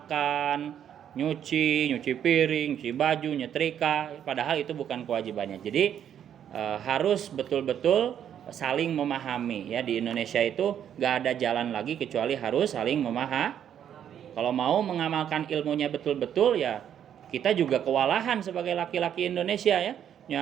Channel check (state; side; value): quieter; left; 9.5 dB